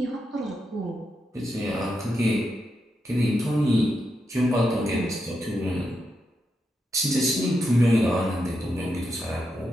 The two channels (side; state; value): both; normal; correlation 0.85